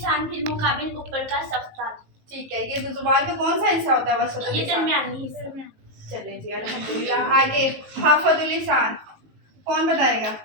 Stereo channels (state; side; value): late; left; 19 ms